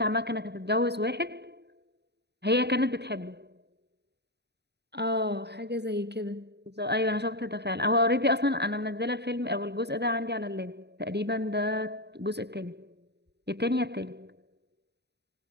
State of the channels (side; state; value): left; late; 0.49 ms